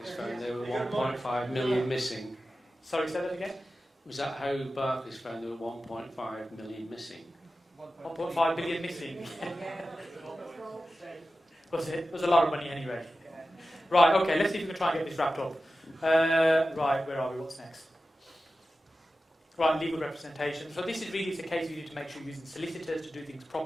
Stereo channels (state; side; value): normal; both; correlation 0.93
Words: found there were 1.5 million missing? Sorry, say that again? Was that how Barclays found there were 1.5 million missing? 1.5 billion missing. Was it? It was a lot of money anyway. Right, okay, let's see if we can try and get this wrapped up. Right, where are we? What's next? Right, legal representation. So this is really a case you need to make sure you're using solicitors to do things